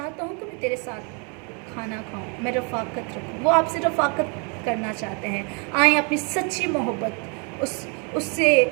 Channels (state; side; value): quieter; left; 35.6 dB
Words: हूँ कि मैं तेरे साथ खाना खाऊं, मैं रफ़ाकत रखूं। वो आपसे रफ़ाकत करना चाहते हैं। आए अपनी सच्ची मोहब्बत